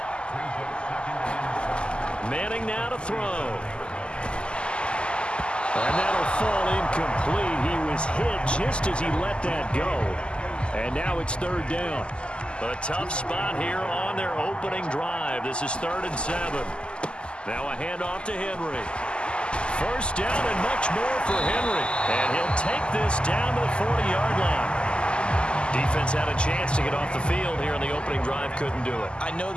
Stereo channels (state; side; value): late; right; 0.051 ms